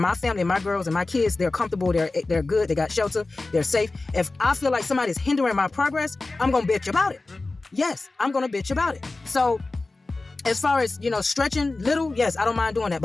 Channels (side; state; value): right; quieter; 3.3 dB